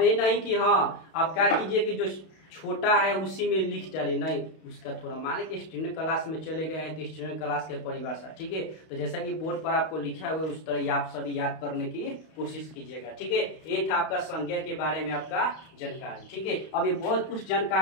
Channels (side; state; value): right; late; 32 ms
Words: ये नहीं कि हाँ आप क्या कीजिए कि जो छोटा है उसी में लिख डाले, नहीं, उसका थोड़ा मान लीजिए स्टैंडर्ड क्लास में चले गए हैं तो स्टैंडर्ड क्लास के परिभाषा। ठीक है, तो जैसा कि बोर्ड पर आपको लिखा हुआ है उस तरह आप सभी याद करने की कोशिश कीजिएगा। ठीक है, ये था आपका संज्ञा के बारे में आपका जानकारी। ठीक है, अब ये बहुत कुछ